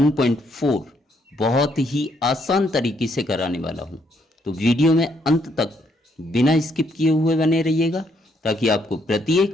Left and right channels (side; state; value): both; normal; correlation 0.72